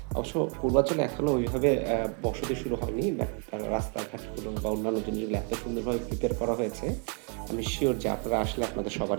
অবশ্য পূর্বাচলে এখনো ওইভাবে বসতি শুরু হয়নি। বাট রাস্তাঘাটগুলো বা অন্যান্য জিনিসগুলো এত সুন্দরভাবে প্রিপেয়ার করা হয়েছে, আমি সিউর যে আপনারা আসলে আপনাদের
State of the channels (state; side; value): quieter; left; 39.3 dB